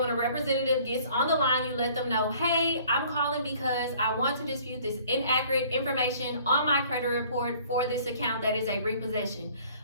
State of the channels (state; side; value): inverted; both; correlation -0.54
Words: a representative gets on the line, you let them know, hey, I'm calling because I want to dispute this inaccurate information on my credit report for this account that is a repossession.